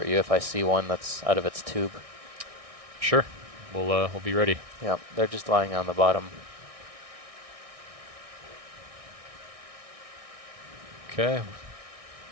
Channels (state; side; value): late; left; 1.6 ms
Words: you if I see one that's out of its tube. Sure. We'll be ready. Yeah, they're just lying on the bottom. Okay.